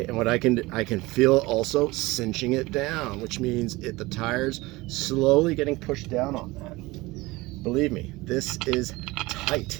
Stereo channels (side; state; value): left; quieter; 21.1 dB